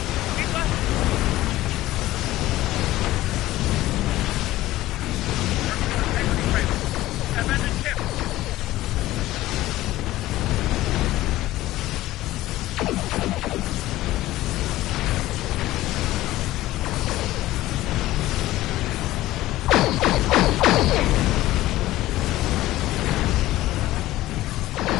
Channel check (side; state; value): right; quieter; 16.1 dB